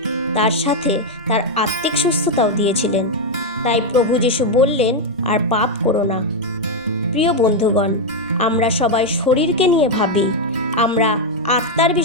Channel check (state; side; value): normal; both; correlation 0.02